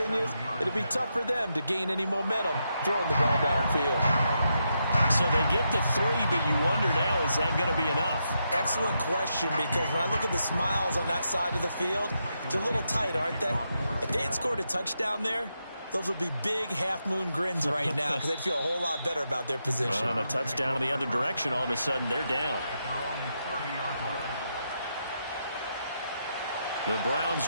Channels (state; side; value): inverted; both; correlation -0.83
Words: it'll be tough for them to gain any momentum throwing the ball downfield. So they get the 3, but you wonder now, is that going to be enough? Excellent question, because when I look at the smiles on that side of the field, they're a little tight, aren't they? If they had scored a touchdown there, those would be big half-moon grins right now because they'd feel a whole lot better about their position. Well, on a touchdown in the other direction, all of a sudden they're down. The Browns